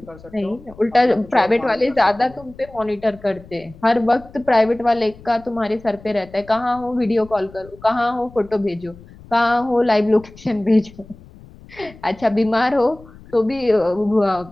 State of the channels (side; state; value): left; noise; rumble, 21 dB below the sound